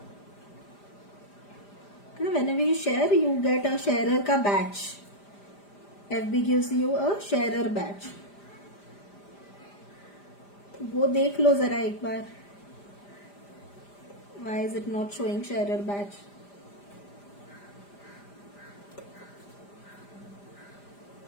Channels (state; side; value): late; right; 5.0 ms